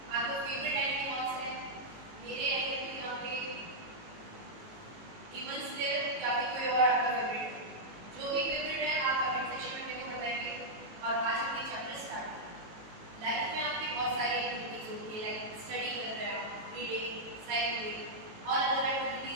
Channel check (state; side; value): late; left; 18 ms